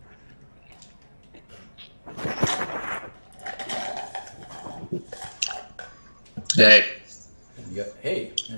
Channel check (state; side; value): inverted; both; correlation -1.00